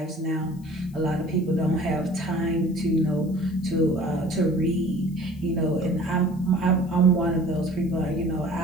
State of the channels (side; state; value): left; noise; hiss, 28 dB below the sound